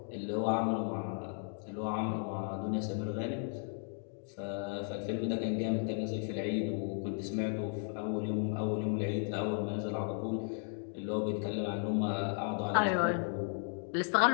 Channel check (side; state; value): right; silent; 54 dB below the other